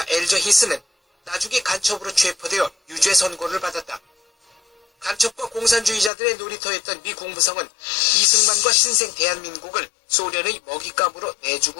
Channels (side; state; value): right; drops out; at 6.1 s